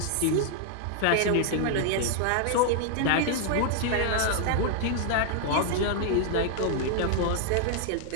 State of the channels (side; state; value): both; different; correlation 0.00